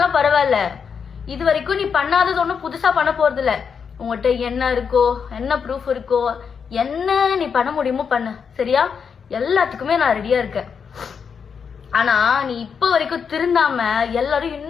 பரவாயில்ல. இது வரைக்கும் நீ பண்ணாதது ஒன்றும் புதுசா பண்ண போறது இல்ல. உங்ககிட்ட என்ன இருக்கோ, என்ன ப்ரூஃப் இருக்கோ, என்ன நீ பண்ண முடியுமோ பண்ணு, சரியா? எல்லாத்துக்குமே நான் ரெடியா இருக்கேன். ஆனா நீ இப்ப வரைக்கும் திருந்தாம எல்லாரும்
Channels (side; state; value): right; quieter; 6.4 dB